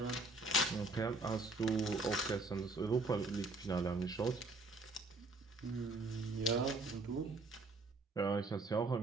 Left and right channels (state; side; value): quieter; left; 3.0 dB